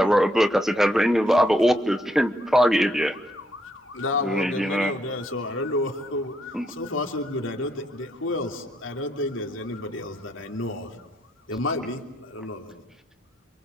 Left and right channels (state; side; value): normal; both; correlation 0.74